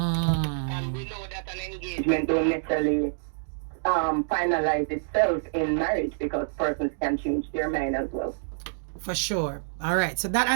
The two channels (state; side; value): silent; left; digital silence